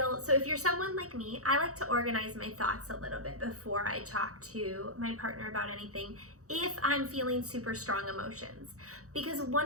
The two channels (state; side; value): late; left; 0.65 ms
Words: so if you're someone like me, I like to organize my thoughts a little bit before I talk to my partner about anything if I'm feeling super strong emotions. Because